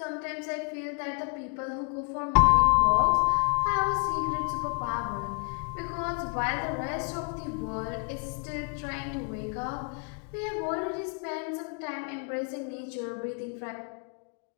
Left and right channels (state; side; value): quieter; right; 39.0 dB